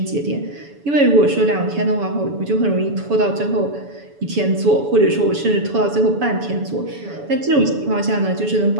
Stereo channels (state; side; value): late; left; 7.0 ms